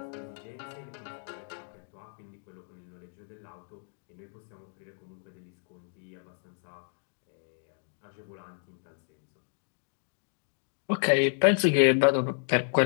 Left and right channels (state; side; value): silent; right; 57 dB below the other